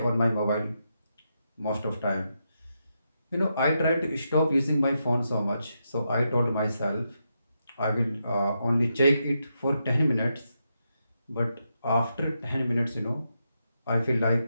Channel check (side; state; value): both; inverted; correlation -0.84